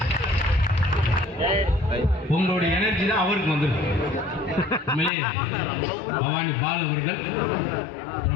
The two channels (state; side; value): drops out; right; at 5.1 s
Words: உங்களுடைய எனர்ஜி தான் அவருக்கு வந்துருக்கு. பவானி பால் அவர்கள்